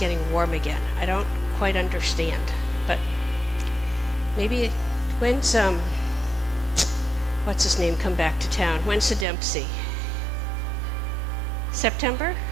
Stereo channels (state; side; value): drops out; left; at 9.2 s